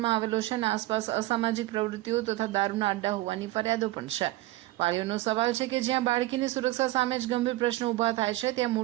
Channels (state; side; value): quieter; left; 17.6 dB